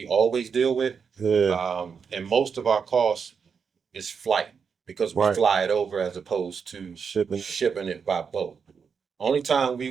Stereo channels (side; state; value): left; quieter; 6.2 dB